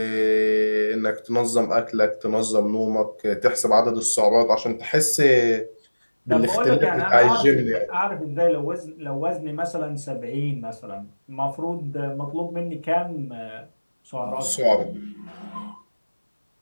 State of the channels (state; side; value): inverted; both; correlation -1.00